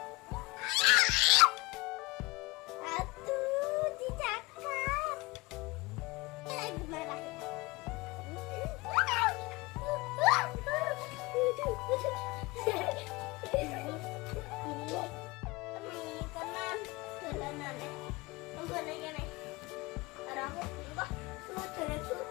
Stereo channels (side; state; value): right; quieter; 23.4 dB